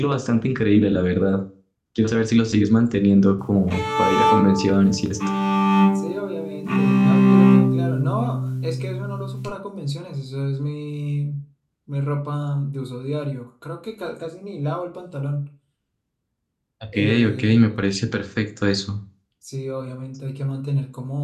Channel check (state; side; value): identical; both; correlation 1.00